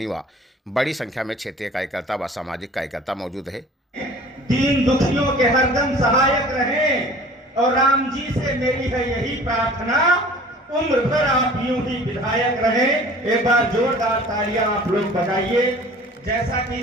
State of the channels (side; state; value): both; normal; correlation 0.46